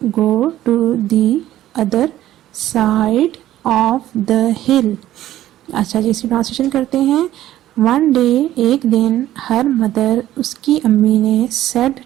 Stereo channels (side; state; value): left; quieter; 13.5 dB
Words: go to the other side of the hill. अच्छा जी, इसकी translation करते हैं। One day एक दिन, her mother उसकी अम्मी ने, सेड